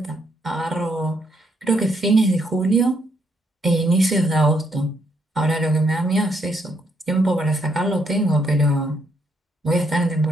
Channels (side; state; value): both; normal; correlation 0.74